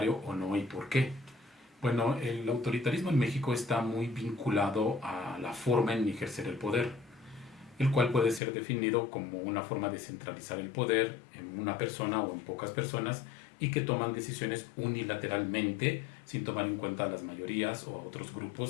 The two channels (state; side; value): drops out; right; at 8.4 s